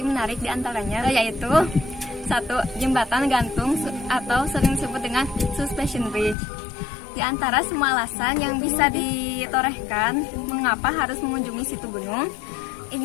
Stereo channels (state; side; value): drops out; right; at 6.4 s